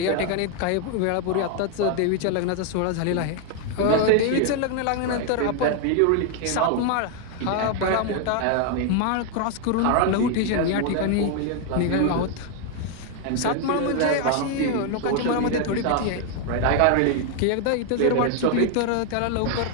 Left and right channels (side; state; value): both; different; correlation 0.00